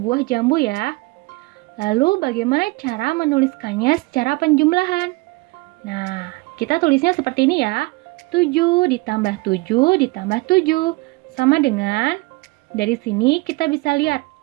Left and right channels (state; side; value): quieter; left; 23.6 dB